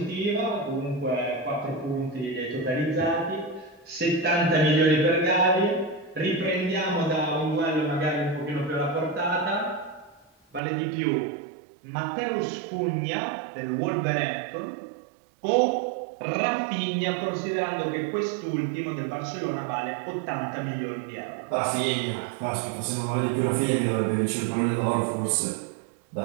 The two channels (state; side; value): drops out; left; at 10.6 s